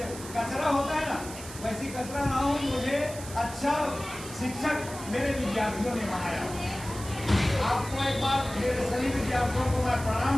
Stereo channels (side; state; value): right; noise; hiss, 13 dB below the sound